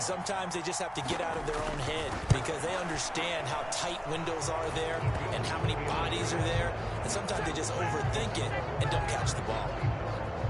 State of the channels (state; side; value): identical; both; correlation 1.00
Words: sometimes they just have to get out of their own head because they understand how tight windows are there and how many bodies are there. And sometimes they just overthink it and don't catch the ball.